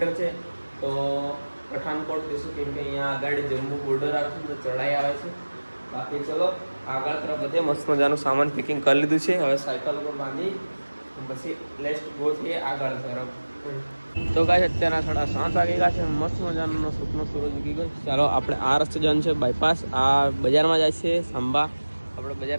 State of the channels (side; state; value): both; inverted; correlation -1.00